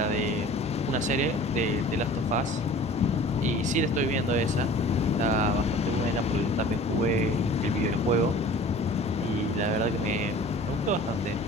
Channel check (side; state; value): both; normal; correlation 0.45